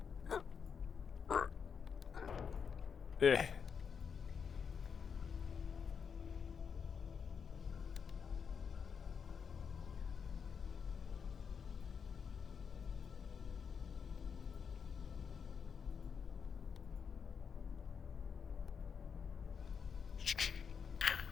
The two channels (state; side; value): quieter; right; 6.5 dB